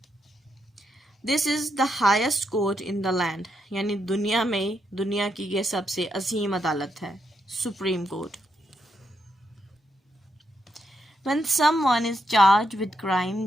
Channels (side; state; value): both; normal; correlation 0.81